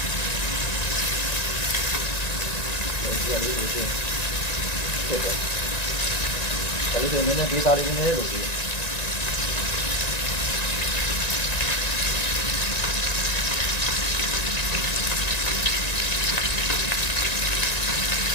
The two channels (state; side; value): late; right; 1.9 ms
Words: အလေးကိုရှင်းဖြစ်တယ်ဒါလေးတွေနည်းနည်းဒေတာလေးနည်းနည်းလို့ဒီ